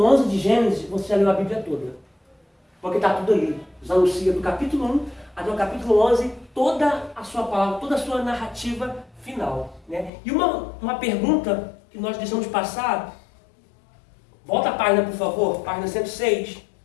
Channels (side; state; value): right; drops out; at 10.1 s